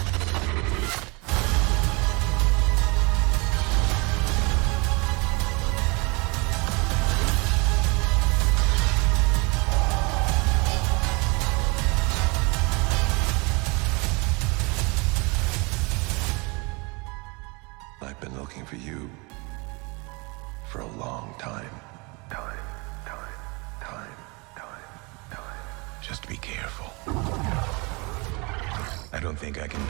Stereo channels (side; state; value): left; quieter; 28.4 dB